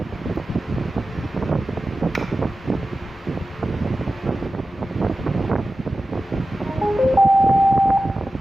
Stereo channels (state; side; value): normal; both; correlation 0.94